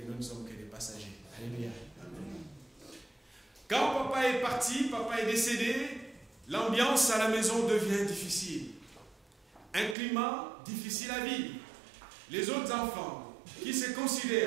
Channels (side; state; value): left; drops out; at 10.0 s